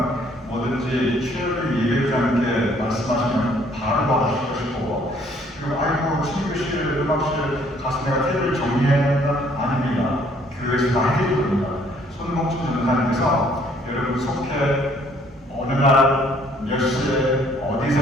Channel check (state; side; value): normal; both; correlation 0.62